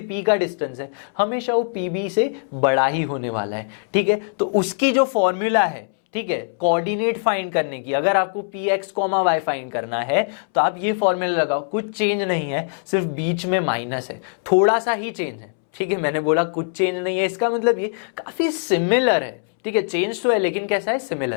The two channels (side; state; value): right; silent; 64 dB below the other